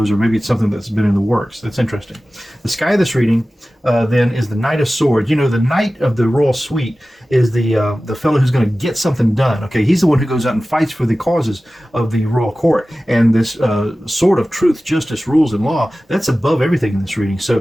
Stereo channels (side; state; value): both; normal; correlation 0.96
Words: or maybe it's something that's been in the works. That's interesting. The sky of this reading, then, is the Knight of Swords. You know, the Knight of the Royal Suite is the fellow who's going to get something done. Okay, he's the one who goes out and fights for the causes of the royal court. And this sword of truth, justice, rules, and law, that's above everything in this reading.